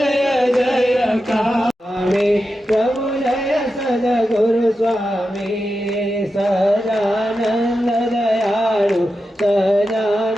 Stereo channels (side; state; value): both; normal; correlation 0.90